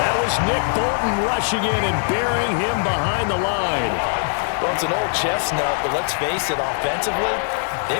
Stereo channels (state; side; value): silent; right; 65 dB below the other